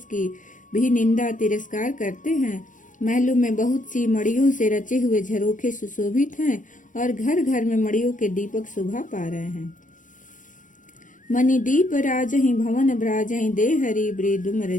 की भी निंदा तिरस्कार करते हैं। महलों में बहुत सी मड़ियों से रचे हुए झरोखे सुशोभित हैं और घर घर में मड़ियों के दीपक शोभा पा रहे हैं। मणि दीप राजहि भवन ब्राजहि, देहरी वृदुम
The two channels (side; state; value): right; late; 0.37 ms